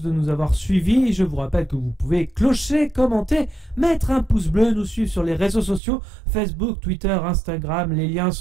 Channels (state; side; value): drops out; left; at 5.8 s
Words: de nous avoir suivis. Je vous rappelle que vous pouvez clocher, commenter, mettre un pouce bleu, nous suivre sur les réseaux sociaux, Facebook, Twitter, Instagram, les liens